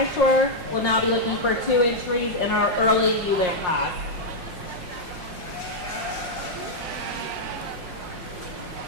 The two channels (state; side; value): late; right; 5.6 ms